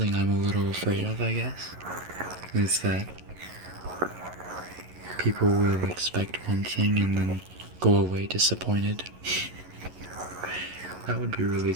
I'm a little afraid of, I guess, is that people will expect one thing and then go away disappointed. That would be really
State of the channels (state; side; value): late; left; 11 ms